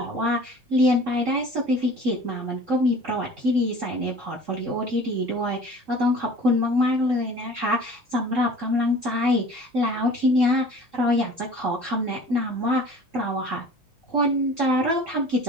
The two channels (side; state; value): both; normal; correlation 0.44